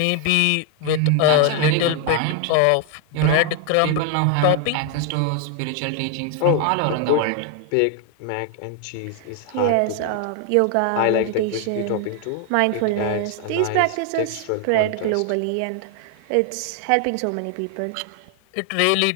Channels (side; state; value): both; different; correlation 0.00